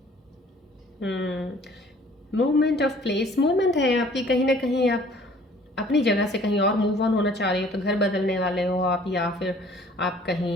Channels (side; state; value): both; normal; correlation 0.54